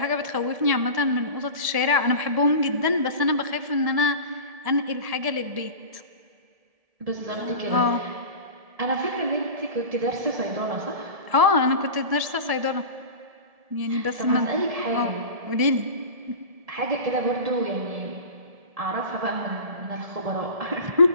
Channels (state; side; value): late; left; 1.7 ms